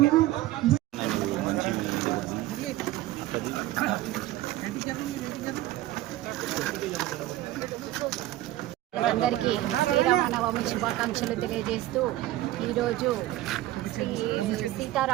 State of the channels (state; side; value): quieter; left; 15.7 dB